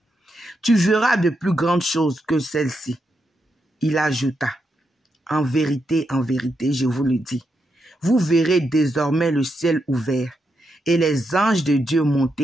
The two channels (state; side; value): normal; both; correlation 0.83